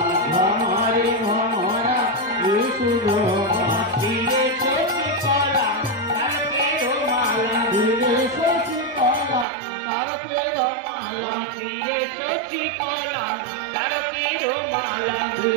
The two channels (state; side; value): drops out; left; at 9.5 s